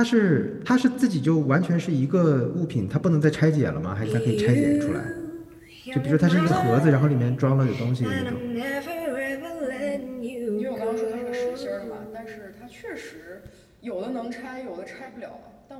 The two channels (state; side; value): identical; both; correlation 1.00